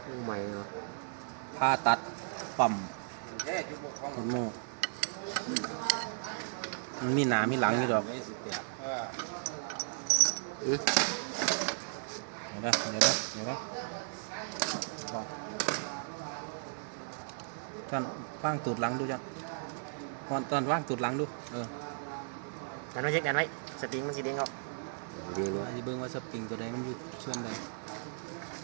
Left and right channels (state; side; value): silent; left; digital silence